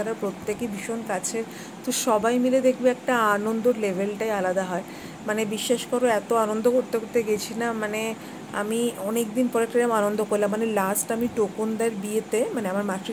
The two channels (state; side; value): identical; both; correlation 1.00